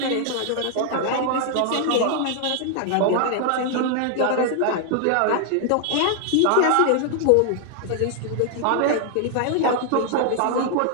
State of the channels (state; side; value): different; both; correlation 0.00